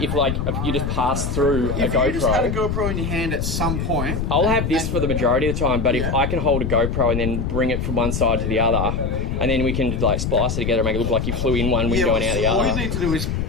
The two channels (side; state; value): left; noise; rumble, 2 dB below the sound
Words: just pass through a GoPro. If you just had a GoPro in your hand at some point... I'll have this for the majority of the time, but if I can hold a GoPro and then bring it from one side to the other, and then we can, like, splice it together and make it look like you flew in one window and out the other. All you need to do is